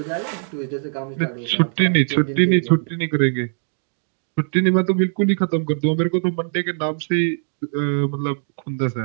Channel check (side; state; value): left; silent; 65 dB below the other